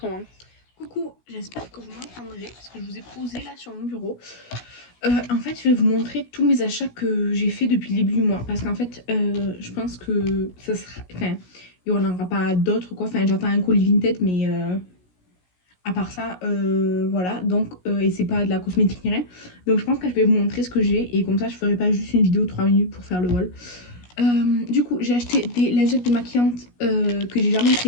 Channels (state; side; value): late; right; 17 ms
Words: moment. Coucou, j'espère que vous m'entendrez, parce que je vous ai posé là sur mon bureau. En fait, je vais vous montrer tous mes achats que j'ai fait depuis le début du mois. Parce qu'en fait, je pense que ça sera... Enfin, il n'y en aura pas d'autres, quoi. Enfin, j'attends un colis Vinted, mais... à part ça, voilà, donc, et c'est pas de la cosmétique ni rien. Donc je pense que je vais vous montrer ce que j'ai et comme ça je ferai pas juste une vidéo de 3 minutes pour faire le haul. Du coup, j'ai acheté des lingettes démaquillantes que j'ai jamais